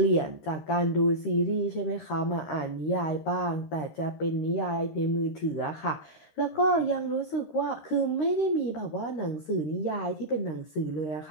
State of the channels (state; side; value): late; right; 13 ms